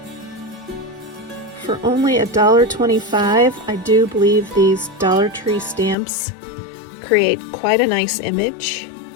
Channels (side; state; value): right; drops out; at 6.0 s